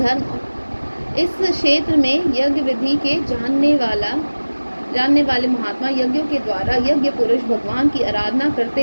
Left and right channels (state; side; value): inverted; both; correlation -1.00